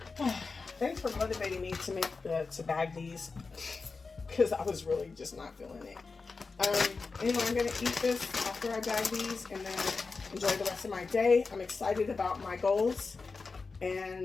Thanks for motivating me to bag these, because I was really just not feeling it. Anyway, I'm going to eat this after I bag these and then enjoy the rest of my day. I'm excited about my goals,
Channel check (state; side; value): quieter; right; 4.3 dB